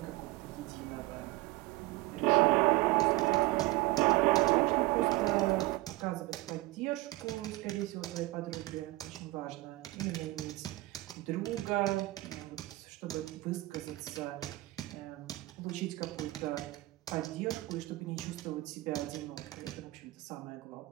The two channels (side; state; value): left; quieter; 20.0 dB